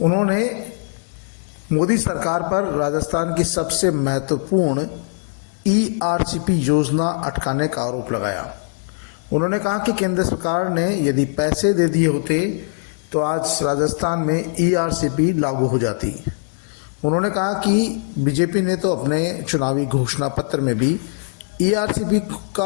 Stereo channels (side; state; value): right; silent; digital silence